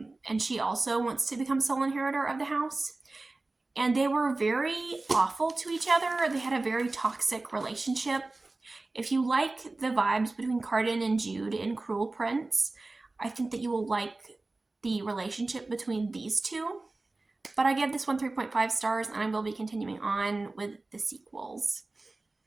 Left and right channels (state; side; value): quieter; left; 3.2 dB